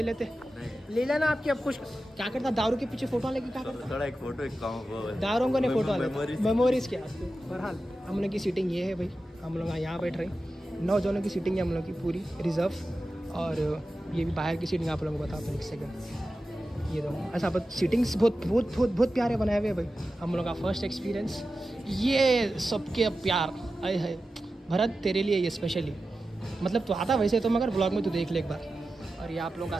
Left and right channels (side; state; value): both; normal; correlation 0.93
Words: लेते ले लेना आपकी। अब कुछ क्या करता, दारू के पीछे फोटो लेके क्या करता? थोड़ा एक फोटो, एक दारों को नहीं फोटो मेमोरीज क्या। बहरहाल हम लोग की सीटिंग ये है भाई, हम लोग यहाँ बैठ रहे हैं। 9 जनों की सीटिंग है हम लोग की पूरी रिजर्व। और ये भी बाहर की सीटिंग आप लोगों को बताता हूँ एक सेकंड। ये दो ऐसा सीटिंग्स बहुत प्यारे बनाए हुए भाई। हम लोग का फर्स्ट एक्सपीरियंस ये सबके प्यार आए है। भरत तेरे लिए ये स्पेशली, मतलब तो आता वैसे तो, मगर ब्लॉग में तो देख ले एक बार। और ये आप लोगों का